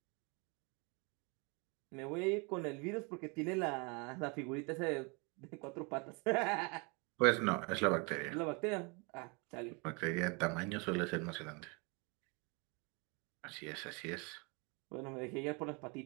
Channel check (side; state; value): left; quieter; 31.3 dB